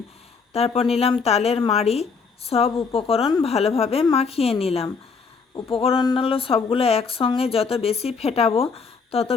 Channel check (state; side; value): quieter; right; 5.2 dB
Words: তারপর নিলাম তালের মাড়ি। সব উপকরণ ভালোভাবে মাখিয়ে নিলাম। উপকরণগুলো সবগুলো একসঙ্গে যত বেশি ফেটাবো তত